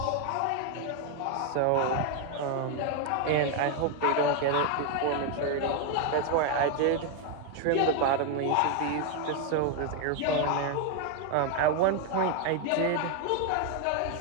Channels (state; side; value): different; both; correlation 0.01